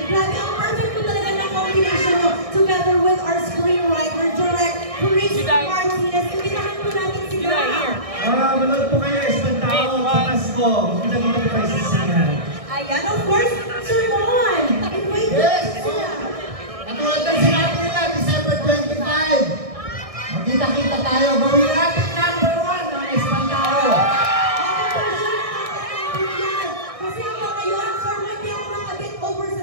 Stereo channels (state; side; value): late; left; 1.6 ms